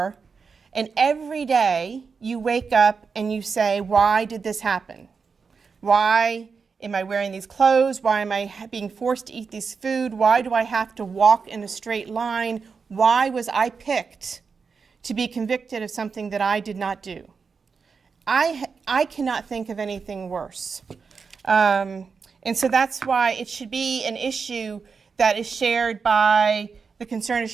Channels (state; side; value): quieter; left; 5.3 dB